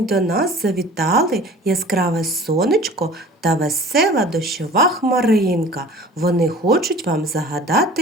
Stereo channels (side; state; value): both; normal; correlation 0.44